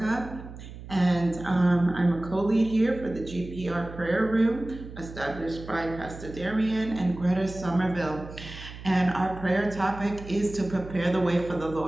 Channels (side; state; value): right; noise; hum, 13 dB below the sound